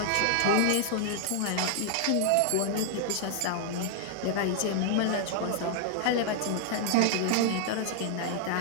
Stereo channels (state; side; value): different; both; correlation 0.00